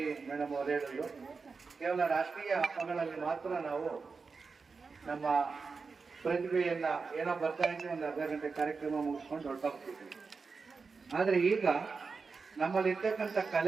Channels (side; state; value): left; quieter; 4.7 dB